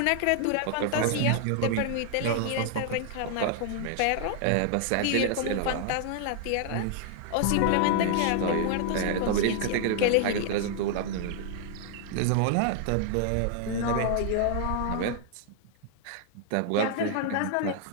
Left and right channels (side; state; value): both; different; correlation 0.00